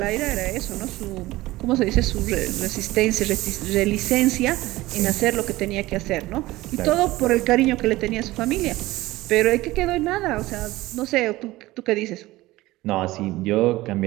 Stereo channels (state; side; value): quieter; left; 18.3 dB